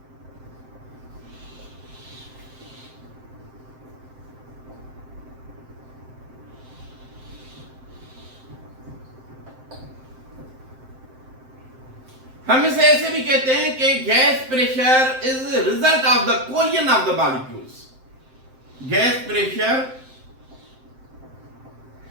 हम इसे ऐसे भी कहते हैं कि gas pressure is result of the collision of the molecules. Gas pressure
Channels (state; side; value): late; left; 7.7 ms